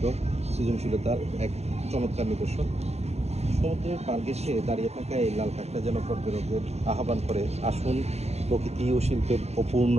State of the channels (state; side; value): late; left; 0.31 ms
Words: সৃজনশীলতার এক চমৎকার নিদর্শন। সমুদ্রের পার ঘেঁষে দাঁড়িয়ে থাকা এই লাল কাঁকড়া যেন পর্যটকদের আহ্বান করে, আসুন প্রকৃতি ও শিল্পের